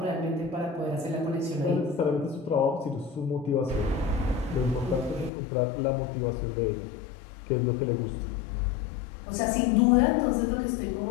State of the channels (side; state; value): right; drops out; at 5.3 s